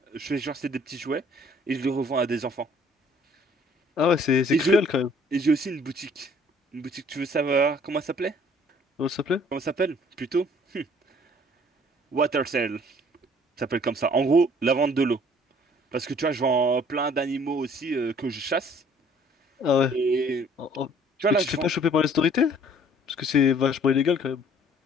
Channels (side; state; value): both; normal; correlation 0.57